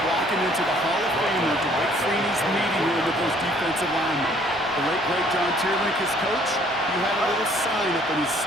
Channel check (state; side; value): normal; both; correlation 0.60